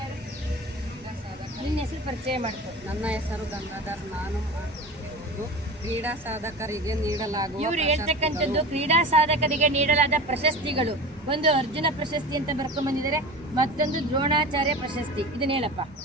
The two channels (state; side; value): normal; both; correlation 0.33